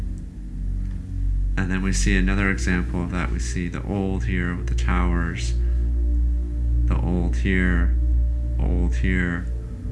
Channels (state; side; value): identical; both; correlation 1.00